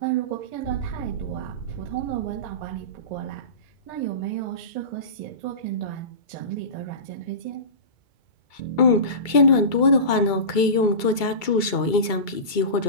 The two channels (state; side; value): late; right; 2.2 ms